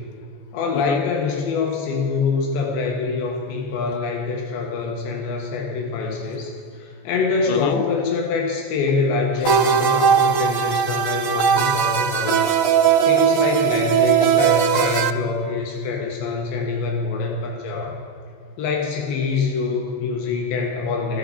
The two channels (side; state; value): right; late; 14 ms